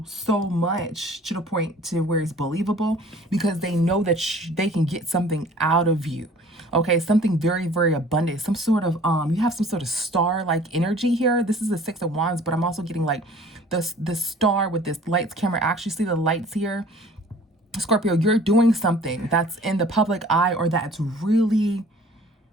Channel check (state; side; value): normal; both; correlation 0.50